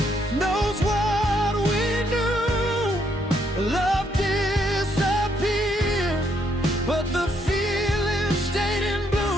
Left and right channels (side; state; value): both; normal; correlation 0.73